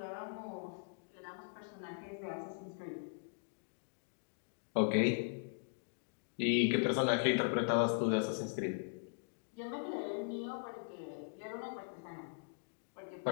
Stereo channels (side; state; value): right; silent; digital silence